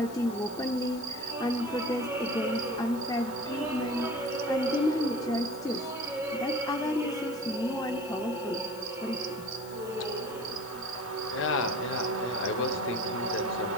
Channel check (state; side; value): noise; left; hiss, 18 dB below the sound